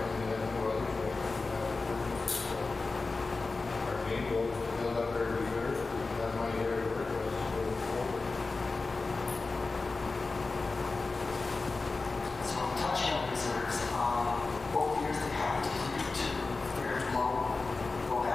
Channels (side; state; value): right; quieter; 3.8 dB